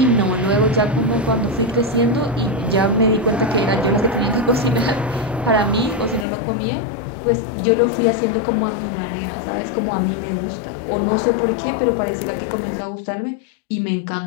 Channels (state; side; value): drops out; right; at 6.2 s